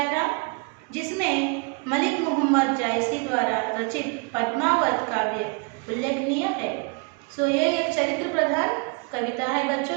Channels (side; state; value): left; quieter; 32.4 dB